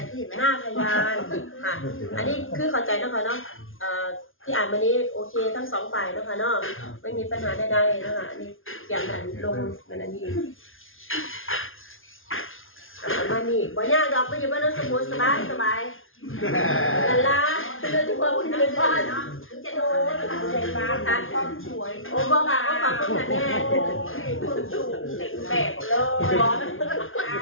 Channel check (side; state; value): right; late; 0.59 ms